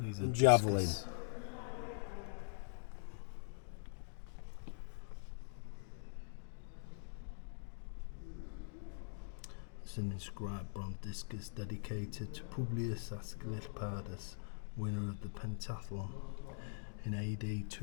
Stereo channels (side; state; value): right; silent; digital silence